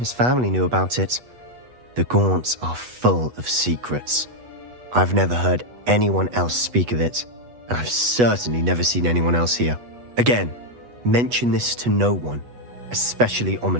family knew about it. The Gaunts are full of secrets. I've never heard anyone else speak of it, and I've certainly never seen anyone else here. Again, mention this to no one, especially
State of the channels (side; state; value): left; late; 8.2 ms